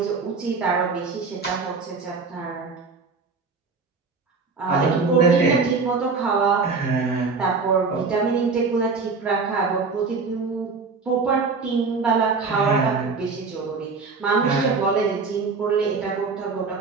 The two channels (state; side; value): quieter; left; 4.6 dB